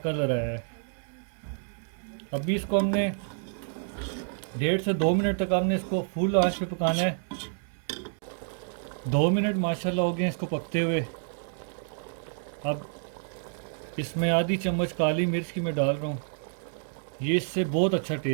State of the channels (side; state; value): left; silent; digital silence